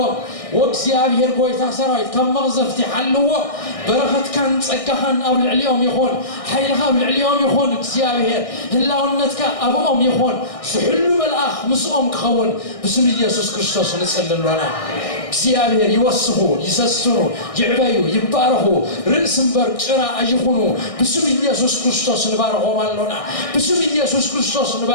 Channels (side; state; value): right; late; 1.6 ms